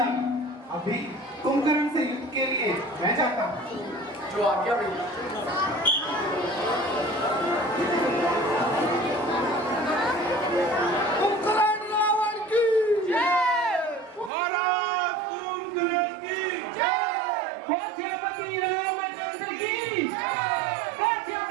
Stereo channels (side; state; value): left; drops out; at 14.3 s